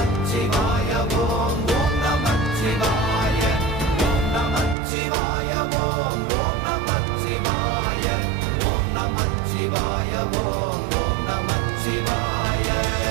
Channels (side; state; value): left; drops out; at 4.8 s